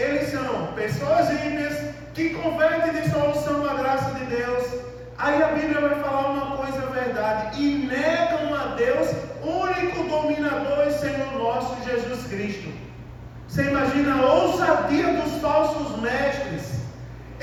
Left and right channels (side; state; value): both; identical; correlation 1.00